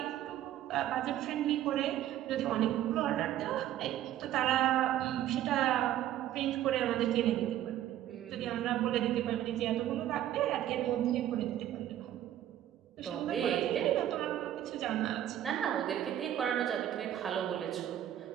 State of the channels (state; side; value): quieter; left; 12.1 dB